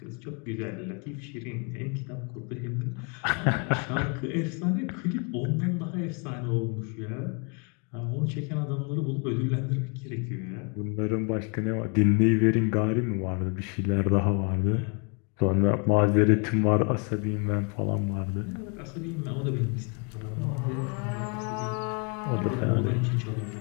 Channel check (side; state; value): right; quieter; 36.1 dB